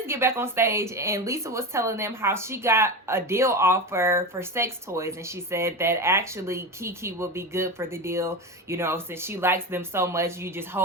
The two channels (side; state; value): both; normal; correlation 0.22